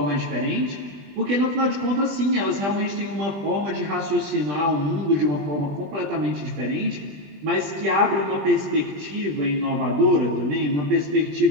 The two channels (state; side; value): late; left; 20 ms